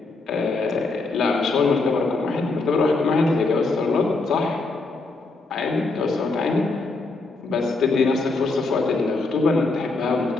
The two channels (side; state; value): right; quieter; 3.5 dB